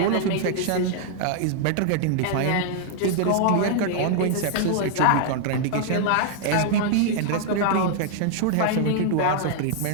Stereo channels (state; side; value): different; both; correlation -0.01